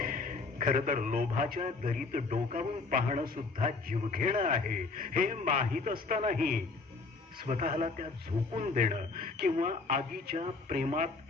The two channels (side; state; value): right; quieter; 3.9 dB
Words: खर तर लोभाच्या दरीत डोकावून पाहणं सुद्धा जीवघेणं आहे हे माहीत असतानाही स्वतःला त्या झोकून देणं किंवा आगीच्या प्रेमात